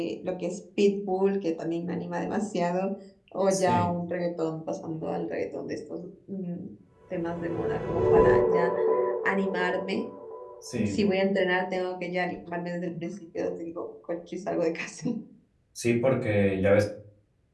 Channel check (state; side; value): identical; both; correlation 1.00